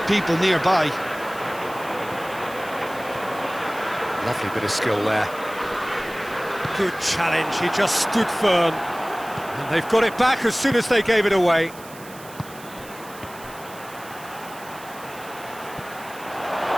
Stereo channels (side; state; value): right; noise; hiss, 19 dB below the sound